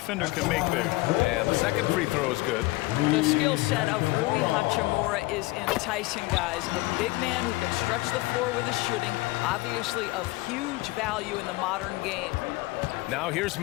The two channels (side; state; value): right; quieter; 21.3 dB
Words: can make there. And the second free throw is good. The skill set of Rui Hachimura is enticing, guys. A big man who can stretch the floor with his shooting, obviously of huge value in the modern game. Now here's